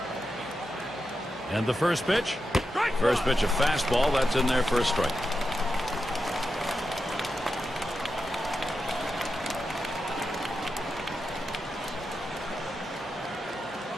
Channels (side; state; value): both; normal; correlation 0.88